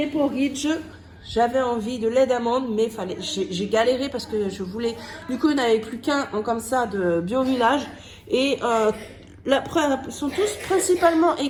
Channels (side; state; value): both; identical; correlation 1.00